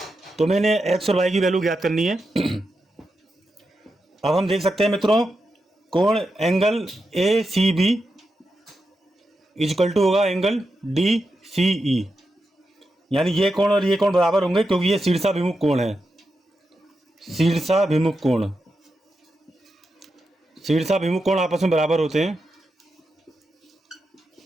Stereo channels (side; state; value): both; normal; correlation 0.87